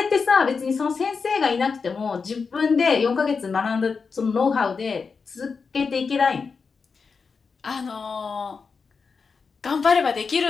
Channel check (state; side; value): quieter; right; 5.1 dB